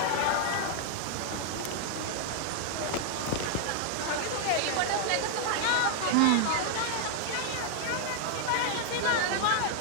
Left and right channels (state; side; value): different; both; correlation 0.00